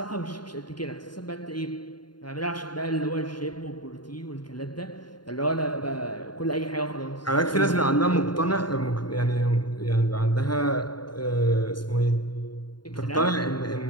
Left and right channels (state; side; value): late; right; 0.71 ms